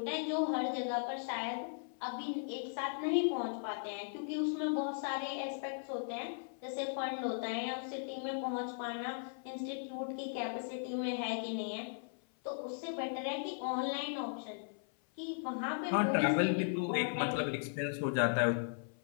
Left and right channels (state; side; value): silent; right; 53 dB below the other